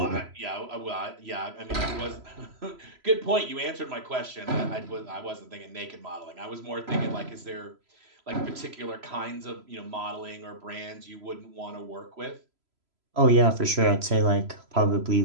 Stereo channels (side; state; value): left; late; 3.0 ms